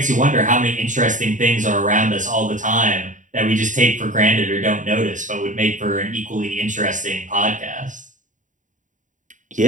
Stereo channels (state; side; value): late; left; 0.37 ms